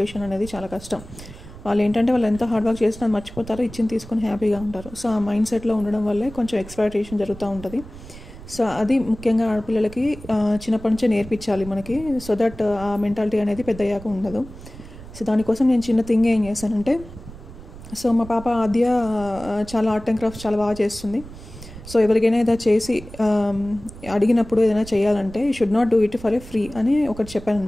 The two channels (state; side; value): noise; right; rumble, 16 dB below the sound